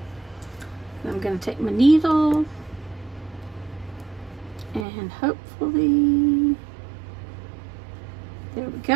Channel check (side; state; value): left; drops out; at 4.9 s